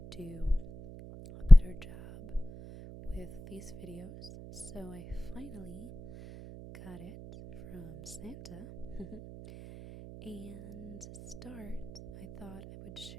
do a better job with these videos. So I finally got it from Santa. And to start, I thought I would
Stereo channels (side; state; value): right; noise; hum, 17 dB below the sound